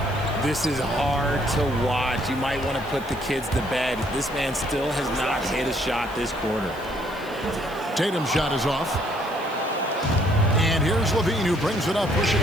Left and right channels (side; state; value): right; noise; hiss, 23 dB below the sound